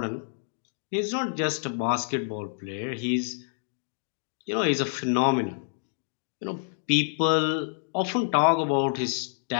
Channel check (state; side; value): silent; right; digital silence